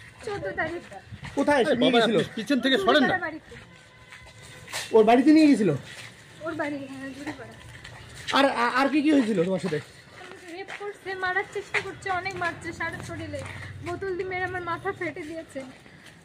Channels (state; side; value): identical; both; correlation 1.00